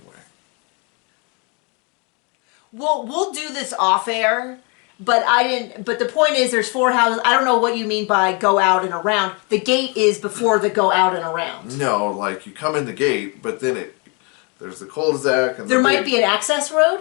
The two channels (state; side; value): quieter; right; 32.5 dB